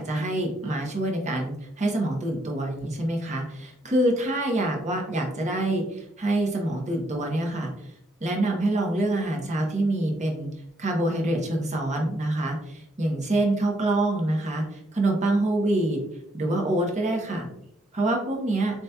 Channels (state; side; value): normal; both; correlation 0.73